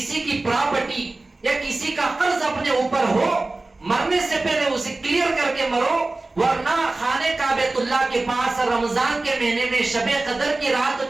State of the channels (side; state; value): left; quieter; 3.1 dB